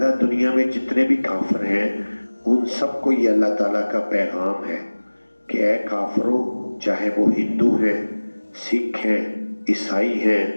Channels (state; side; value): inverted; both; correlation -1.00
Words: دنیا میں جتنے بھی کافر ہیں ان سب کو یہ اللہ تعالیٰ کا پیغام ہے کہ اے کافرو، چاہے وہ ہندو ہیں، سکھ ہیں، عیسائی ہیں،